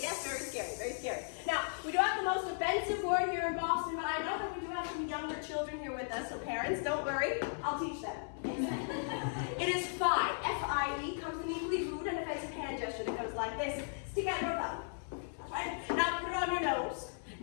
yes, very scary, very scary. Now, we do have the most offensive word here in Boston, but I know that we do have some younger children here with us, so parents, don't worry, I'll teach them. It is fi. F-I-E comes in an equally rude and offensive hand gesture that goes like this. Stick out your thumb. Right? Now put it on your nose.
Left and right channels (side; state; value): right; silent; 53 dB below the other